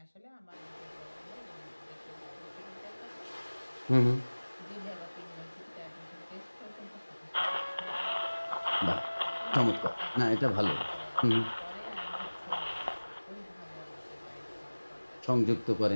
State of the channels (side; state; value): both; inverted; correlation -1.00